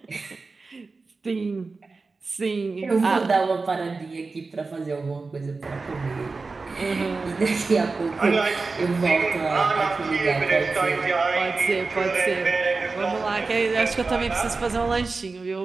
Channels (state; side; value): quieter; left; 4.0 dB